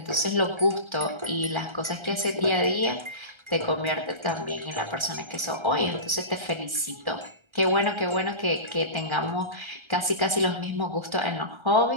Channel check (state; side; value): late; left; 1.3 ms